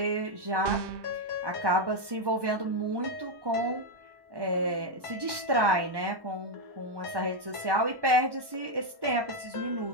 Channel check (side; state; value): left; late; 1.1 ms